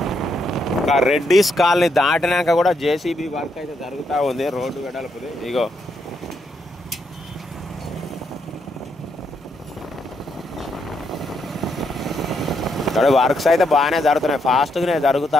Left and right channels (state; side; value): normal; both; correlation 0.78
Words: రెడ్డీస్ కాలనీ దాటినాక కూడా జేసీబీ వర్క్ అయితే జరుగుతూ ఉంది, రోడ్డు వెడల్పుది. ఇగో ఇక్కడ వర్క్స్ అయితే బాగానే జరుగుతున్నాయి, ఫాస్ట్గానే జరుగుతూ